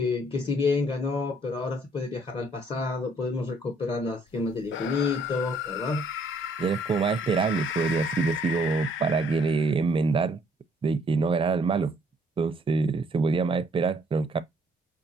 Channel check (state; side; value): normal; both; correlation 0.64